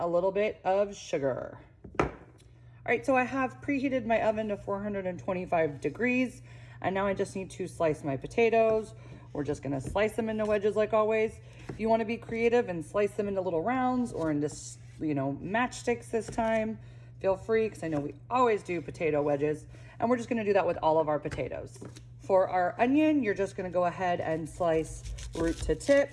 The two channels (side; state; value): both; identical; correlation 1.00